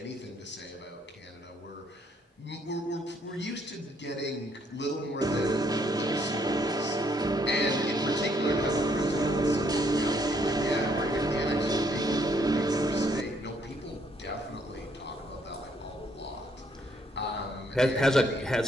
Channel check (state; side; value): normal; both; correlation 0.69